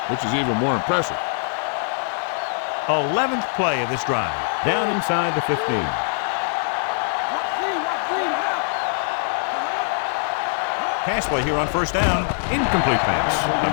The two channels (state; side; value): silent; right; 64 dB below the other